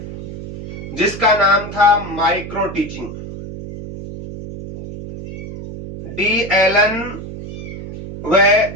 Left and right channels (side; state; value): right; noise; hum, 11 dB below the sound